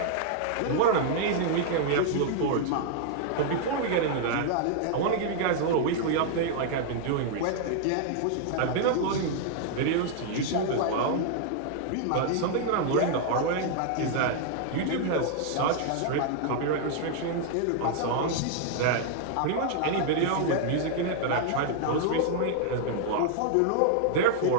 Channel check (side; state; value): both; different; correlation -0.01